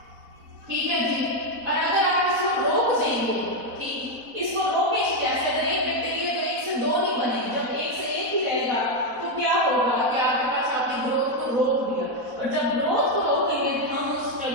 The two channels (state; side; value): late; left; 4.1 ms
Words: ठीक है जी। और अगर आप इसको रोक देंगे, ठीक, इसको रोके कैसे? अगर एक बैक्टीरिया तो एक से दो नहीं बनेगी, जब एक से एक ही रहेगा तो क्या होगा कि आपके पास आपकी ग्रोथ को रोक दिया। और जब ग्रोथ को रोकेंगे तो हम उस